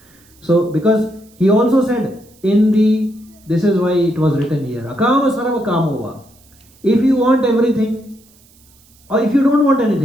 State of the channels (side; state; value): right; noise; hiss, 30 dB below the sound